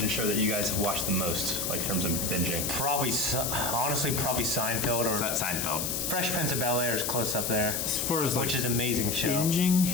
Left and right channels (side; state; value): left; noise; hiss, 1 dB below the sound